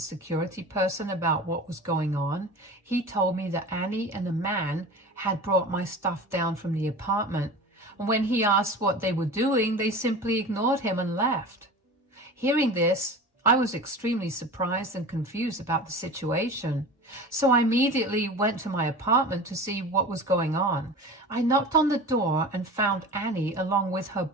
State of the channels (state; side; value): normal; both; correlation 0.35